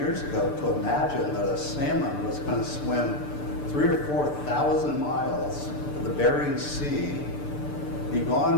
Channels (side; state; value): right; late; 6.8 ms